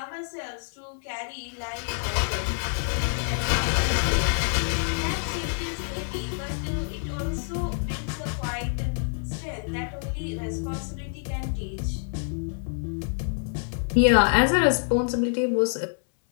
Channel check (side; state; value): right; silent; 60 dB below the other